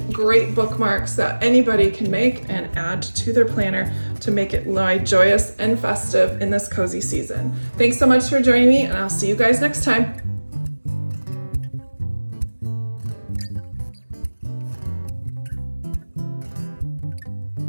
great bookmarks that anybody can make and add to their planner to make it lie joyous and festive in this cozy season. Thanks so much for joining me, and I'll see you guys next time.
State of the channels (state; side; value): inverted; both; correlation -1.00